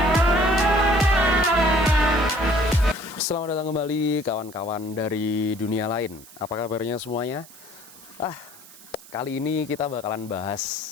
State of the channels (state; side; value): noise; right; hiss, 21 dB below the sound